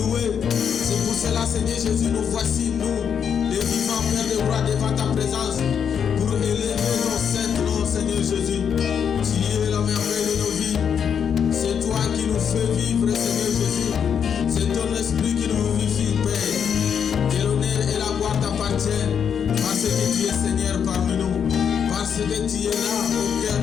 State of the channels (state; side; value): quieter; right; 7.6 dB